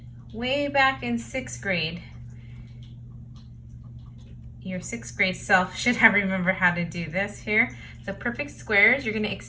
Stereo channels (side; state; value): both; identical; correlation 1.00